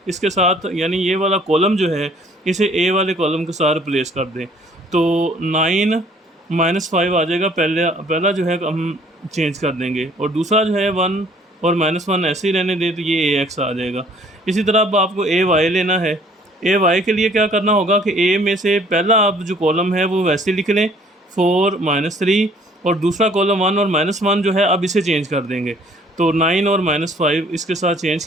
इसके साथ, यानी ये वाला कॉलम जो है इसे a वाले कॉलम के साथ रिप्लेस कर दें। तो 9 -5 आ जाएगा, पहला जो है हम चेंज कर देंगे, और दूसरा जो है 1 और -1 ऐसे ही रहने दें, तो ये ax आ जाएगा। इसी तरह अब आपको ay लेना है। ay के लिए क्या करना होगा कि a में से पहला अब जो कॉलम है वो वैसे लिख लें 4 -3, और दूसरा कॉलम 1 और -1 जो है अब इसे चेंज कर देंगे। तो 9 और -5 इसके साथ चेंज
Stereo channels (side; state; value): both; normal; correlation 0.57